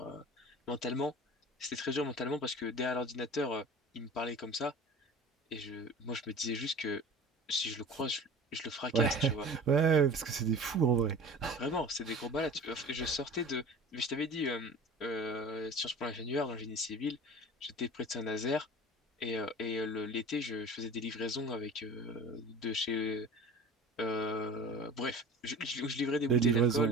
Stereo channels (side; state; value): both; normal; correlation 0.39